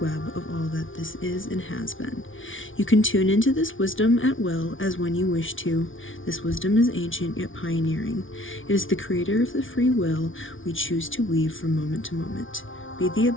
web of all that this is and has been. You can tune into this wisdom at will as when you wish to. This wisdom is ancient yet pioneering. It is the creator of the free will we choose to weave from moment to moment. Be the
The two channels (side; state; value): right; late; 0.57 ms